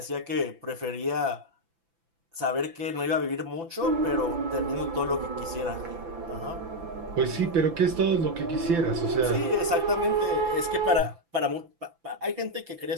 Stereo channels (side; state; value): left; late; 6.0 ms